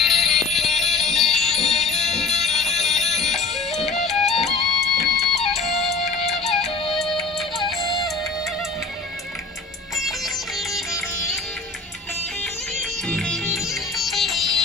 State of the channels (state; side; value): quieter; right; 4.0 dB